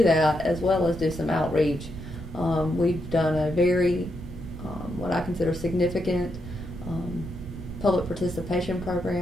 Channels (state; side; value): noise; right; rumble, 11 dB below the sound